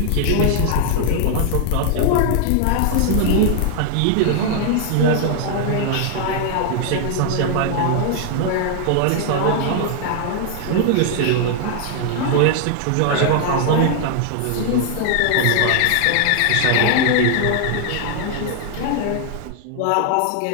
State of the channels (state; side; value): different; both; correlation 0.00